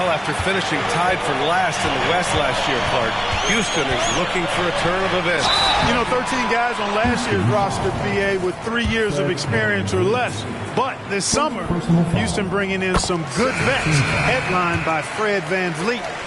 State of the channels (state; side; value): identical; both; correlation 1.00